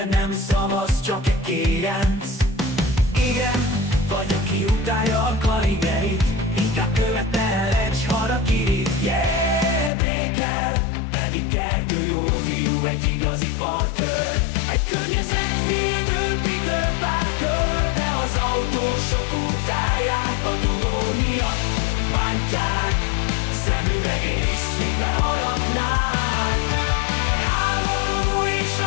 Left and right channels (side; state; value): right; drops out; at 9.9 s